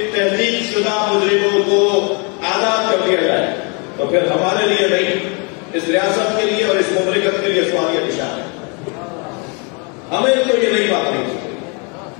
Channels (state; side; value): quieter; right; 33.9 dB